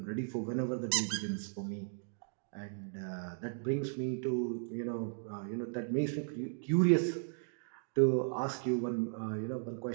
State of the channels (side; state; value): left; silent; digital silence